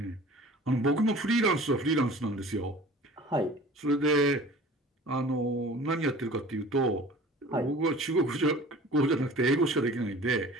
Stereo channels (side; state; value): both; normal; correlation 0.43